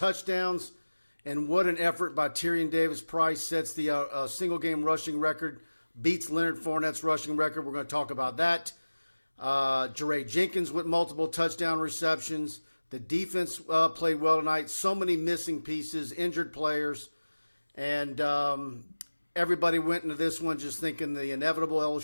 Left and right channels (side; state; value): both; inverted; correlation -1.00